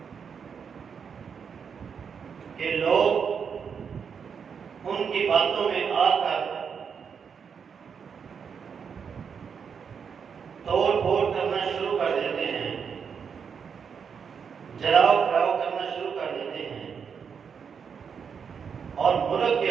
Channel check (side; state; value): left; quieter; 6.6 dB